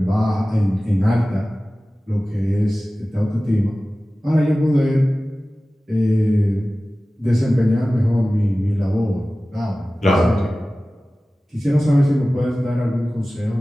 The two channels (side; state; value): both; normal; correlation 0.97